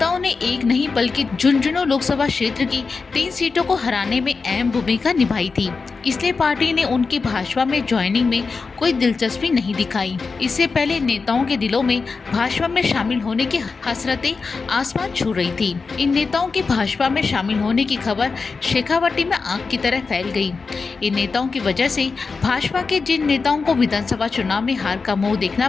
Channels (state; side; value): quieter; right; 4.6 dB